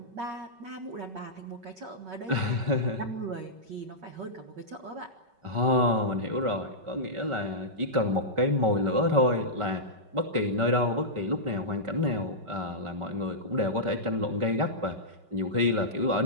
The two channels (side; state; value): left; late; 5.3 ms